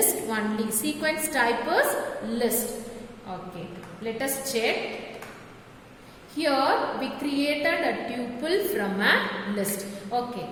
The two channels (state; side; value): identical; both; correlation 1.00